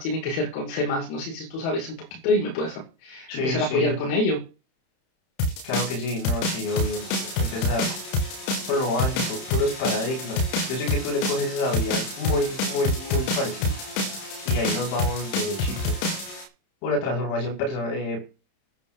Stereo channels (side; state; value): right; late; 31 ms